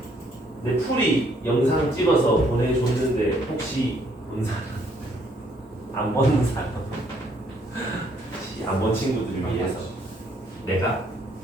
내 풀이 영상 찍어서 보내줬는데 혹시 본 사람? 안 본 사람? 안 본 친구들을 위해서 내가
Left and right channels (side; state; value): both; normal; correlation 0.67